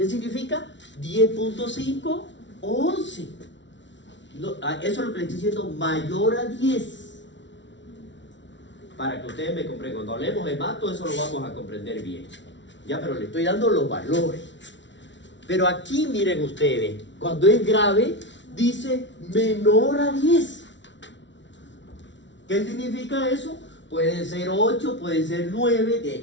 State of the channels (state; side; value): late; right; 0.53 ms